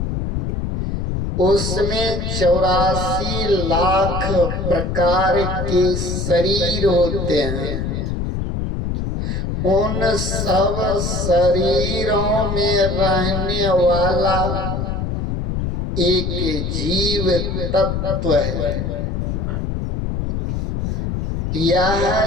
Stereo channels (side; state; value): left; noise; rumble, 2 dB below the sound